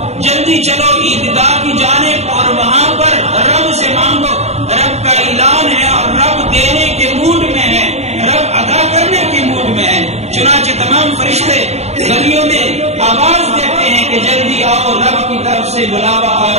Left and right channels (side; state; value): left; late; 0.32 ms